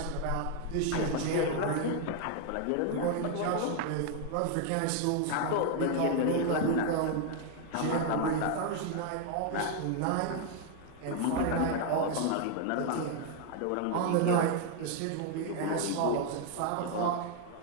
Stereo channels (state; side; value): different; both; correlation 0.00